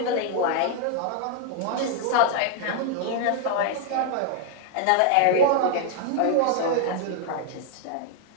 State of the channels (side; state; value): both; different; correlation 0.00